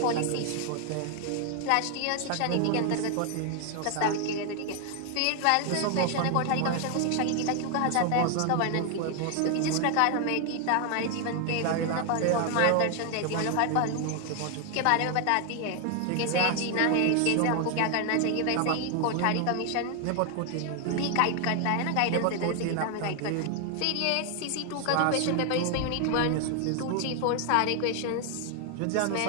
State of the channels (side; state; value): both; different; correlation 0.00